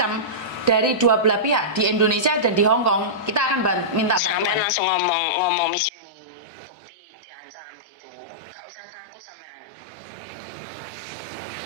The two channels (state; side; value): drops out; left; at 5.9 s